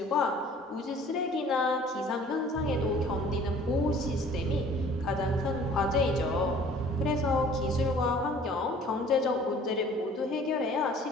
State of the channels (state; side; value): normal; both; correlation 0.51